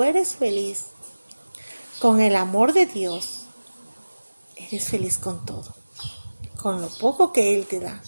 eres feliz con el amor de Dios, eres feliz con todo. Con lo poco que Él te da.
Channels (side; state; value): both; inverted; correlation -1.00